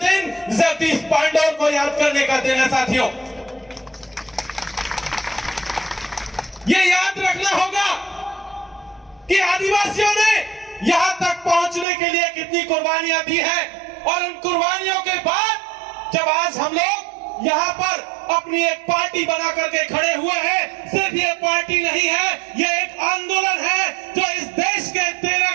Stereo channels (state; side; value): drops out; left; at 11.9 s